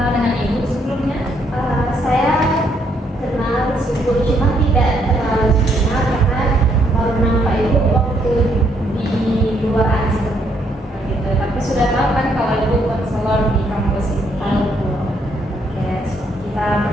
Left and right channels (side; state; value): both; normal; correlation 0.72